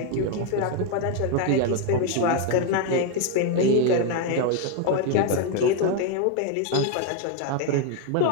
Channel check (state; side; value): different; both; correlation 0.01